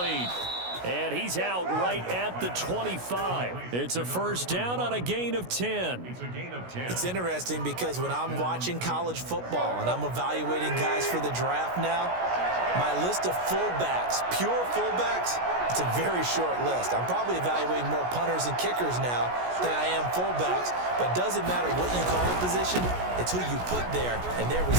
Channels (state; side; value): late; left; 16 ms